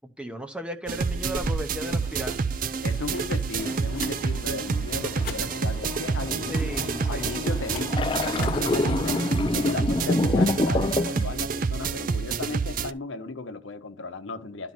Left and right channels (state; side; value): normal; both; correlation 0.59